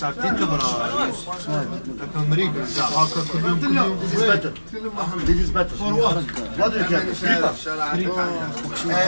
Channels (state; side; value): inverted; both; correlation -1.00